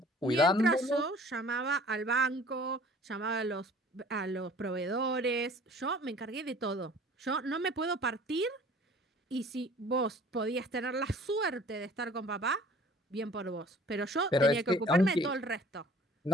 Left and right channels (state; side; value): normal; both; correlation 0.50